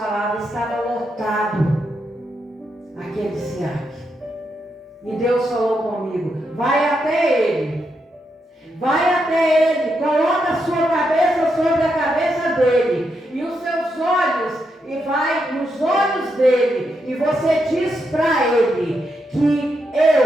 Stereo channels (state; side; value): normal; both; correlation 0.82